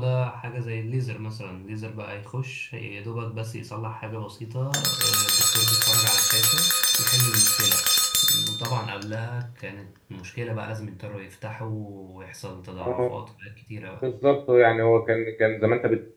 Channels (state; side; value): identical; both; correlation 1.00